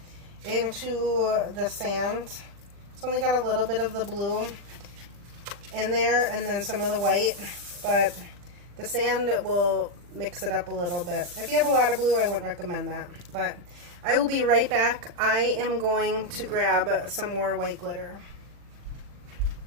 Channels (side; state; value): left; late; 40 ms